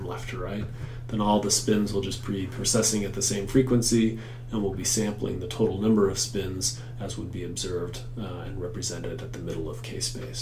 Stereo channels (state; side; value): identical; both; correlation 1.00